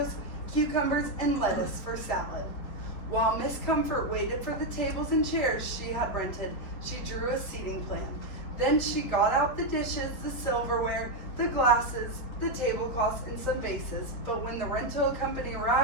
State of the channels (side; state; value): right; late; 4.4 ms